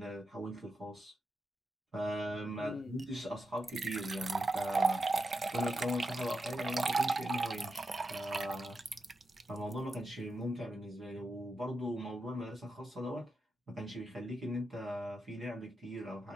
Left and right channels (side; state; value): both; normal; correlation 0.87